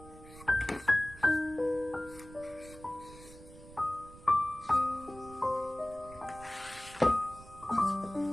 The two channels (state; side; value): noise; right; rumble, 19 dB below the sound